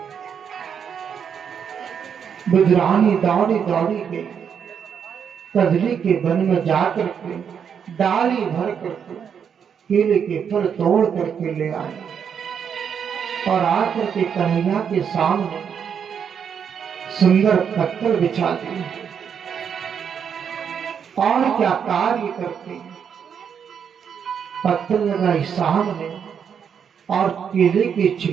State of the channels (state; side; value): quieter; left; 7.5 dB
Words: विद्रानी दौड़ी दौड़ी गई, कदली के वन में जाकर के डाली भर करके केले के फल तोड़ करके ले आए और आकर के कन्हैया के सामने सुंदर पत्थर बिछा दिए। और क्या कार्य करते हैं, पत्थर लगाई सामने और केले के